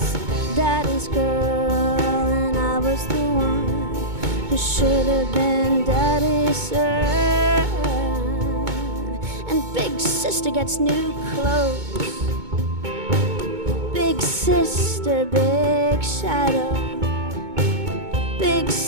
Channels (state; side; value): late; left; 2.2 ms